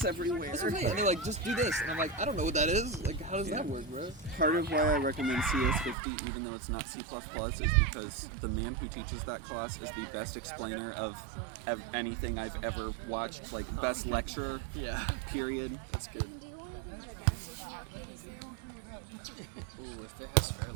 everywhere? That's what I'm saying. And they're like, just do this, and I'm like, I don't know what that is. Like, how does that work, bro? Part of why I recommend CS50, even though it's not C++, is because the man who teaches that class is the best explainer of anything I've ever watched. Like, best lecturer. Yeah. Period. That's good. Ooh, if it has fair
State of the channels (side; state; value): left; drops out; at 6.0 s